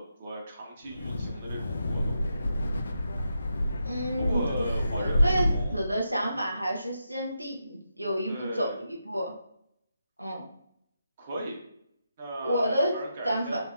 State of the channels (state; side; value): inverted; both; correlation -0.84